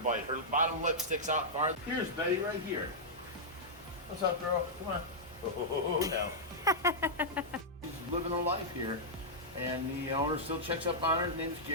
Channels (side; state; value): both; normal; correlation -0.09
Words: Her bottom lip sticks out far. Here's Betty right here. What's up, girl? Come on. Oh, no. She's living a life here, and the owner still checks up on her. His name is